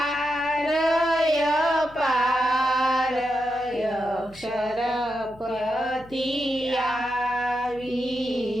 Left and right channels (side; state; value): left; noise; hum, 23 dB below the sound